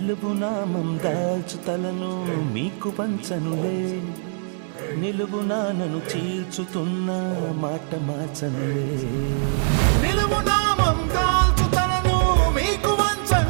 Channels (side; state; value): left; silent; digital silence